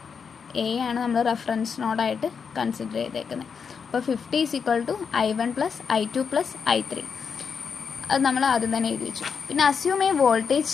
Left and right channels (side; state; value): right; quieter; 6.2 dB